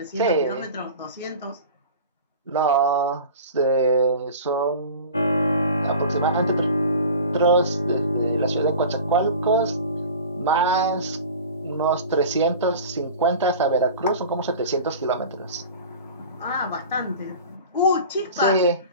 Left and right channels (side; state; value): both; inverted; correlation -0.38